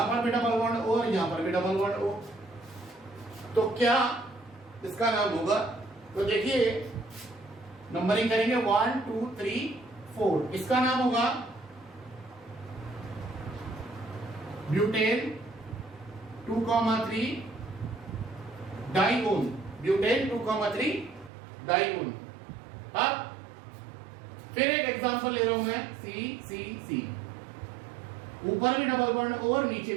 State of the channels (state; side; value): drops out; left; at 21.3 s